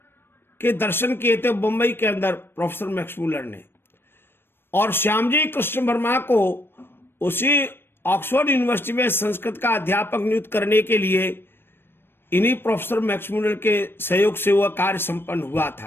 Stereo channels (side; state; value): right; late; 0.10 ms